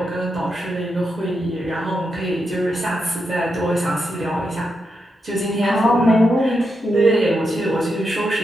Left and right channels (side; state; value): both; normal; correlation 0.85